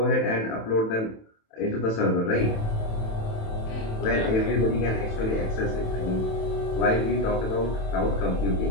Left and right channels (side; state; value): right; late; 27 ms